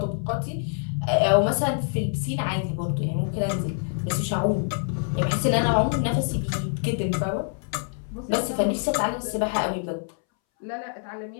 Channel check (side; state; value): right; silent; 61 dB below the other